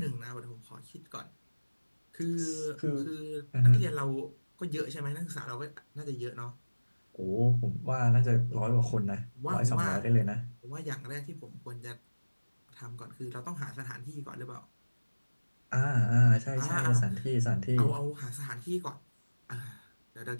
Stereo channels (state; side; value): inverted; both; correlation -1.00